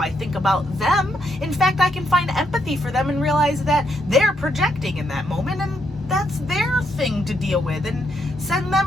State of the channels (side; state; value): both; normal; correlation 0.77